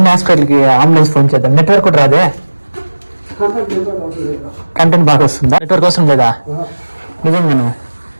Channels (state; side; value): inverted; both; correlation -1.00